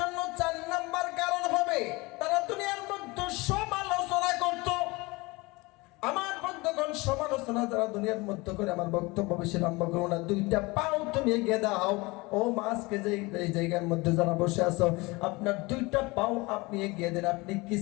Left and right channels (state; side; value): quieter; right; 24.0 dB